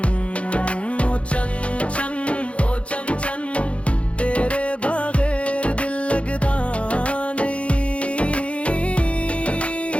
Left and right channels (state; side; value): late; right; 0.061 ms